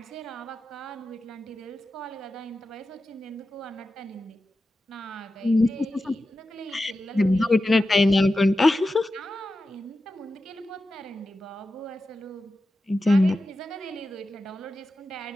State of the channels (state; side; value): normal; both; correlation 0.92